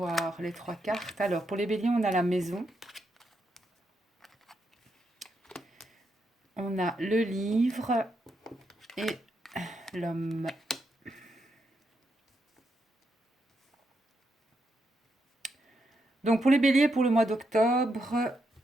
les trois cartes. Alors, pour les béliers, on a la maison. On a le livre et l'homme. Donc, pour les béliers, pour le mois d'octobre,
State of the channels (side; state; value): both; normal; correlation 0.81